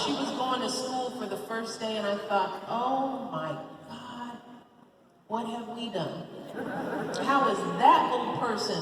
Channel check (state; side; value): identical; both; correlation 1.00